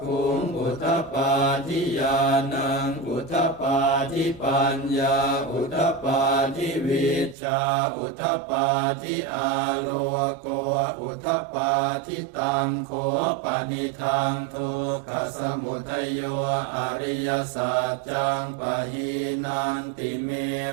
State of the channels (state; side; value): drops out; left; at 7.4 s